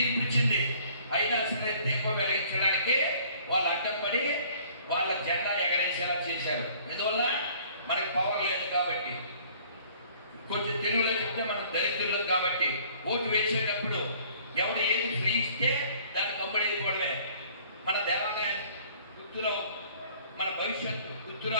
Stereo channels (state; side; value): inverted; both; correlation -0.56